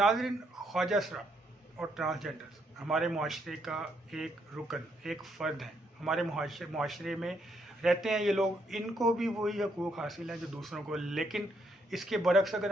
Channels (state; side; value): normal; both; correlation 0.74